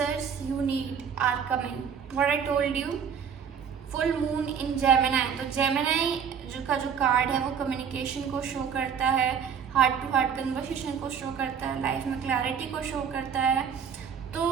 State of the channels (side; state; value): left; quieter; 7.3 dB